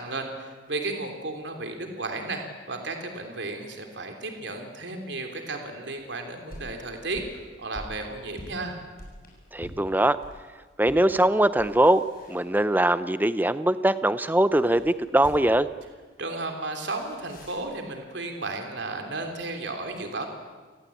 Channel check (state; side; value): normal; both; correlation 0.73